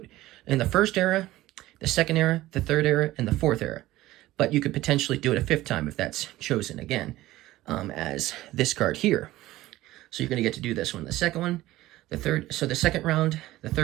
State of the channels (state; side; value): quieter; left; 16.5 dB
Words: in the 1st era, the 2nd era, the 3rd era, and the 4th era. But you could potentially do it a 5th time if that's chosen again, as this card here. So you're going to get to do this one, the 2nd one, the 3rd, so the 2nd round, the